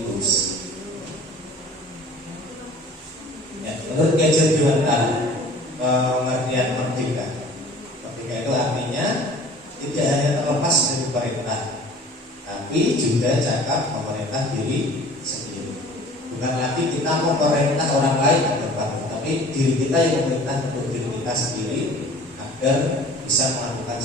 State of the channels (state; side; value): normal; both; correlation 0.46